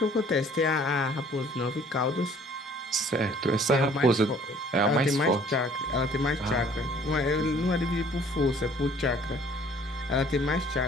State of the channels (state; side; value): normal; both; correlation 0.56